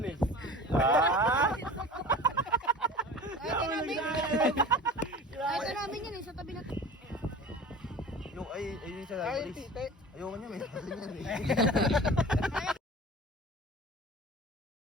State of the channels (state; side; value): normal; both; correlation 0.38